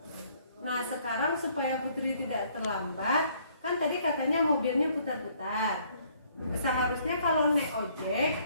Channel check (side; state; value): both; inverted; correlation -0.63